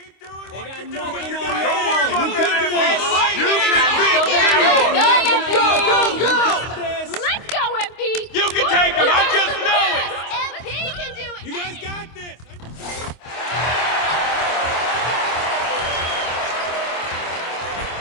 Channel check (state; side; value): late; right; 25 ms